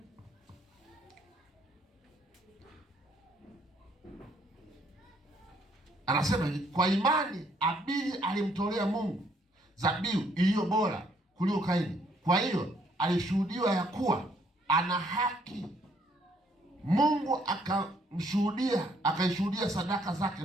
Anasema kwa imani Abili alimtolea Mungu dhabihu iliyo bora kuliko Kaini. Kwa hiyo alishuhudiwa ya kuwa ana haki. Mungu akaishuhudia sadaka zake,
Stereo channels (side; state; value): both; normal; correlation 0.67